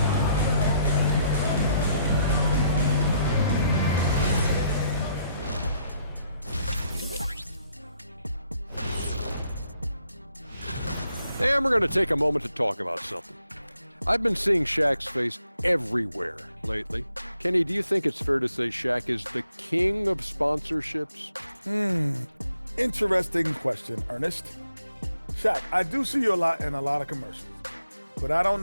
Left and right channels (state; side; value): inverted; both; correlation -0.73